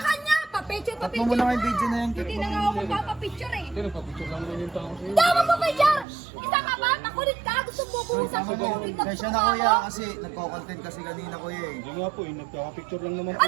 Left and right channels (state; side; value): drops out; left; at 6.1 s